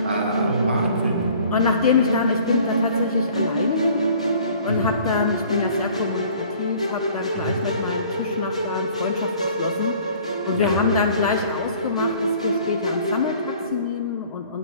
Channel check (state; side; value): inverted; both; correlation -0.52